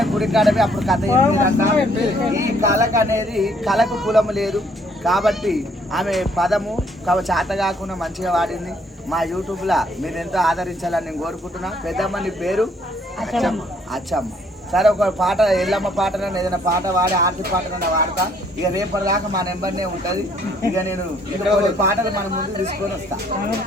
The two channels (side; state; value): both; normal; correlation 0.65